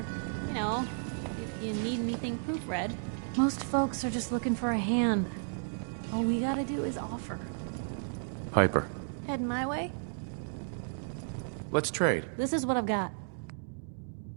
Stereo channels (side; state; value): left; silent; digital silence